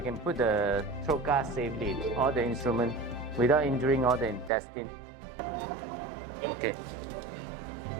can put the throat gas safely, all the instrument, without injuring all the intestine. Okay.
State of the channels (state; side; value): drops out; left; at 4.5 s